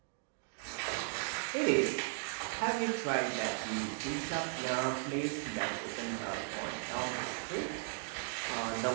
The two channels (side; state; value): left; silent; 53 dB below the other